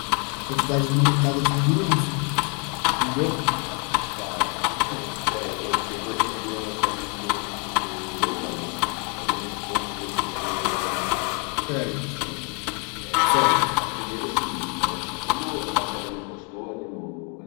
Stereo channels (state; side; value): quieter; right; 33.9 dB